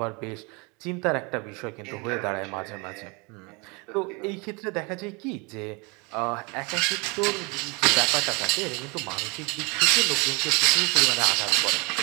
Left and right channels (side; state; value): left; quieter; 29.4 dB